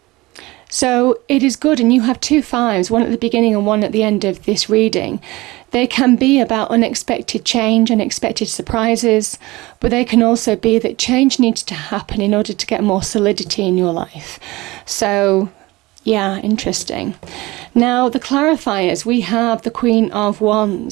So it is good, and you have 2 5s, one at the beginning and one at the end of this reading. They can be about unexpected change, unexpected surprises, but they can also be that change needs to happen in order to get more solidity in your life. So, yeah, interesting. Now, the clarifiers, we have the Queen of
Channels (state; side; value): quieter; left; 20.9 dB